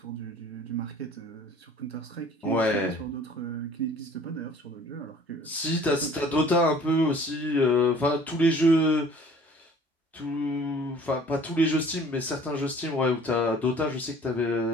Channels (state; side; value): normal; both; correlation 0.51